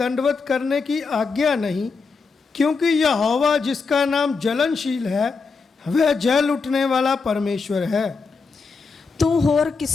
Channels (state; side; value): quieter; right; 4.7 dB